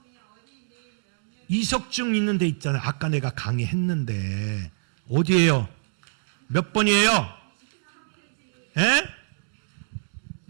이석증 있는 데 있잖아요. 아까 내가 강의했는데 어디예요? 몇 번이에요? 에?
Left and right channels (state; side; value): silent; left; digital silence